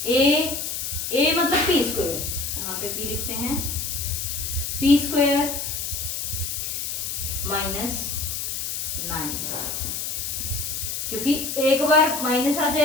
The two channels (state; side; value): noise; left; hiss, 3 dB below the sound